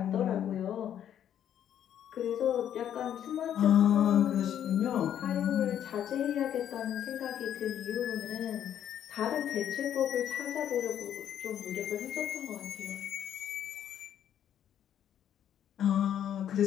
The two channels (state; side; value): quieter; right; 10.0 dB